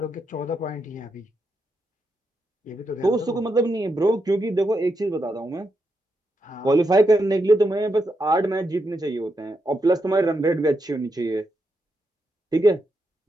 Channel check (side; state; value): both; normal; correlation 0.83